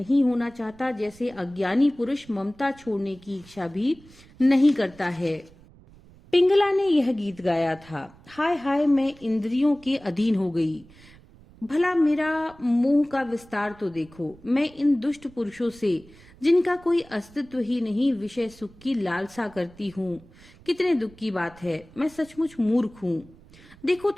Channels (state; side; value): noise; right; rumble, 24 dB below the sound